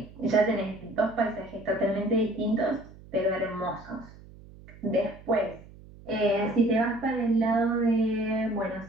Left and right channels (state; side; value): noise; right; hum, 20 dB below the sound